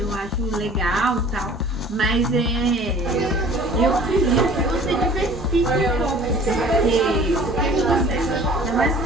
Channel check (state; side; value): normal; both; correlation 0.49